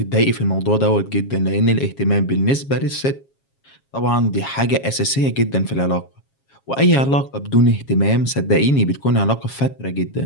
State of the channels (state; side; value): late; right; 7.3 ms